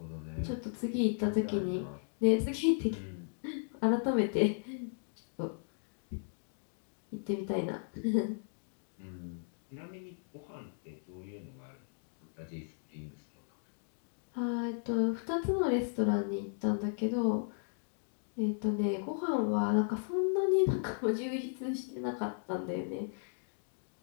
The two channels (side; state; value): right; silent; digital silence